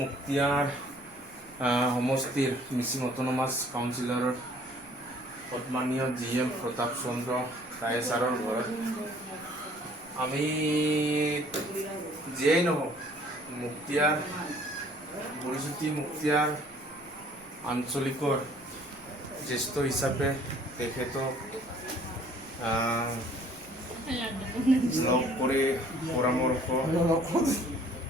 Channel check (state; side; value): noise; right; rumble, 28 dB below the sound